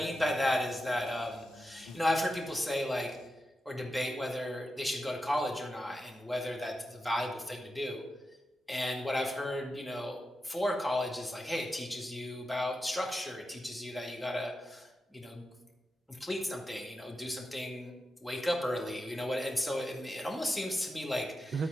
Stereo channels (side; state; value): both; normal; correlation 0.89